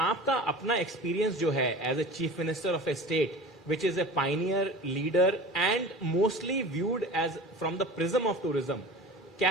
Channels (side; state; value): both; normal; correlation 0.36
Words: अपना experience जो है as a chief minister of a state which is a pioneer, leader and mostly viewed as from the prism of tourism,